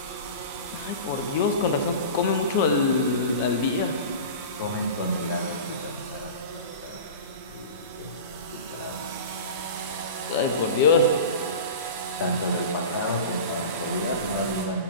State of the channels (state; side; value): inverted; both; correlation -0.33